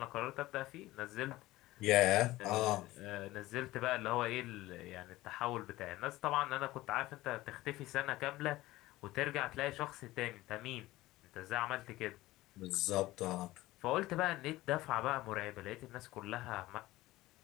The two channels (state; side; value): quieter; right; 17.7 dB